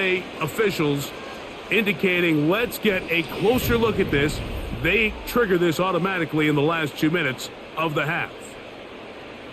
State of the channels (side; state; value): both; identical; correlation 1.00